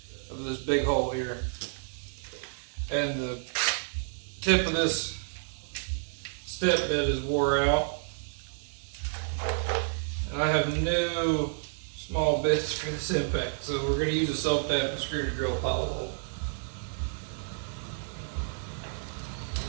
of this big hole here. And the tip of this step bit is wore out. And I have no small bits for this impact, so we're going to use a self-tapping screw to drill a hollow hole.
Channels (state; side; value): silent; left; digital silence